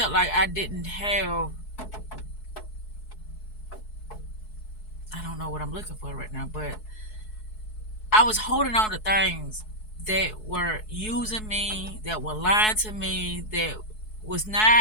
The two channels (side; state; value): right; late; 4.7 ms